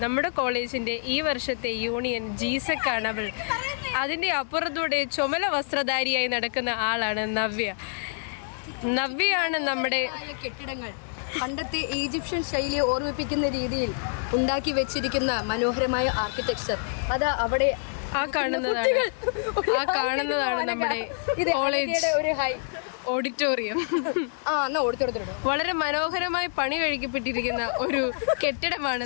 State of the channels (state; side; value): silent; right; digital silence